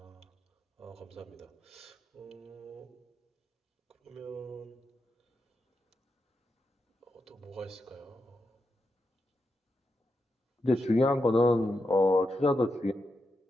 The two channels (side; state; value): both; normal; correlation 0.86